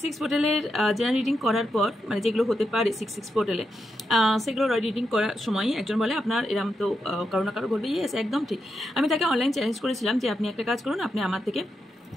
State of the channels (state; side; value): normal; both; correlation 0.85